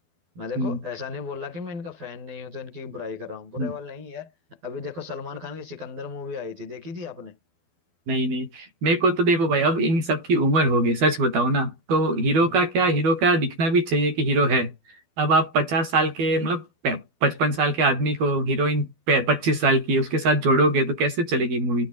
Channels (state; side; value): late; left; 12 ms